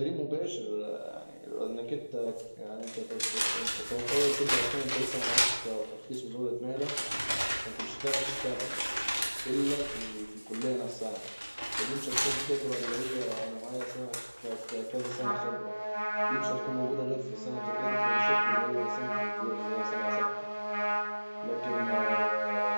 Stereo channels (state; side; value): inverted; both; correlation -1.00